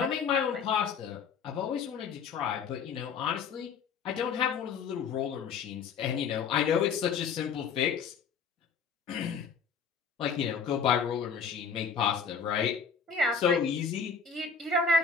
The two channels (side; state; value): right; quieter; 6.1 dB